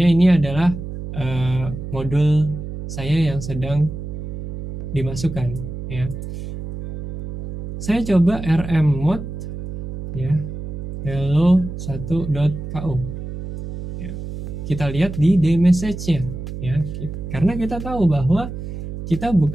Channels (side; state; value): right; noise; hum, 8 dB below the sound